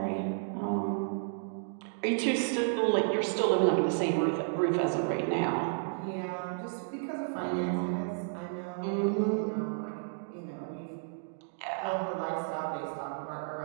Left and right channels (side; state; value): left; silent; digital silence